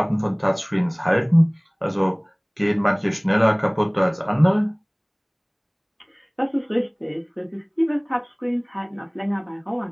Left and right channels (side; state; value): both; identical; correlation 1.00